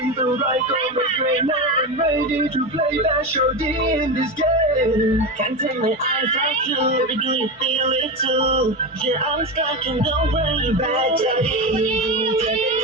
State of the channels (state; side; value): normal; both; correlation 0.19